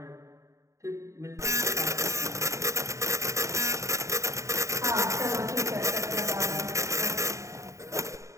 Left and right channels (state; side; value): late; left; 0.15 ms